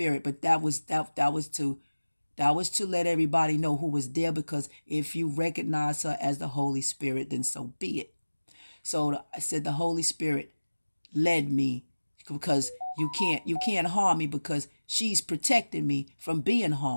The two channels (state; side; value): inverted; both; correlation -1.00